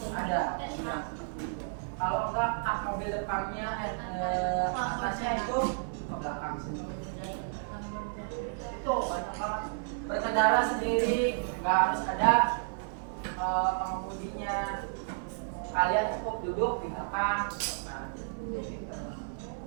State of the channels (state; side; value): silent; left; 56 dB below the other